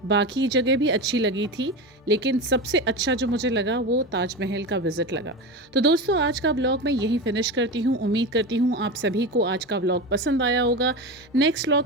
बाकी जगह भी अच्छी लगी थी लेकिन सबसे अच्छा जो मुझे लगा वो ताजमहल का विज़िट लगा। तो दोस्तों आज का व्लॉग मैं यहीं फिनिश करती हूँ। उम्मीद करती हूँ आप सभी को आज का व्लॉग पसंद आया होगा। नेक्स्ट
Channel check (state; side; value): normal; both; correlation 0.23